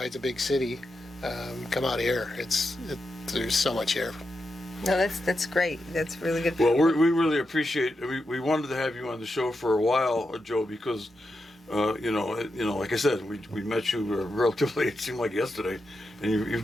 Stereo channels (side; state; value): both; normal; correlation 0.87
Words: a big city. Come out here. There's so much here. No, that's great. That's really good. Well, we really appreciate. We wanted to have you on the show for a while, Joe, because like I said, we met you relatively. It seemed like yesterday, and you've